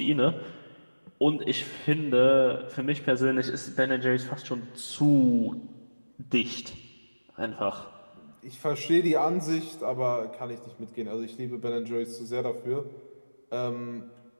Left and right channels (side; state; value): both; inverted; correlation -1.00